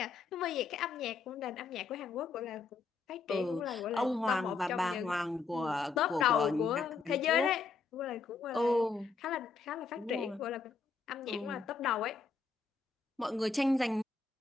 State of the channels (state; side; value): quieter; right; 4.7 dB